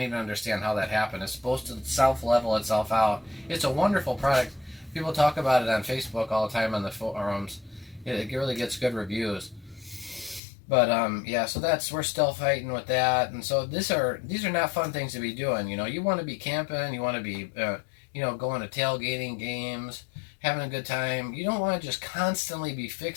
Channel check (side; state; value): right; drops out; at 10.4 s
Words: even understand how that happened. It's supposed to self-level itself out. It's a wonderful product. People talk about it on Facebook all the time on the forums. It really gets good reviews. But yeah, so we're still fighting with that, and so these are not fun things to be doing. You want to be camping, you want to be going to tailgating games, having a good time. You don't want to just constantly be